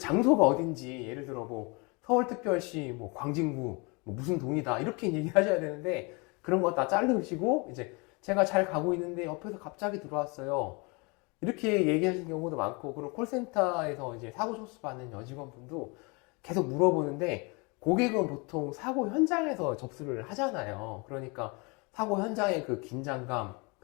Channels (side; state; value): right; quieter; 29.6 dB